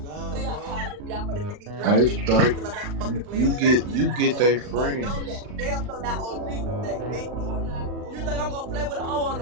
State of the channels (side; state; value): left; late; 39 ms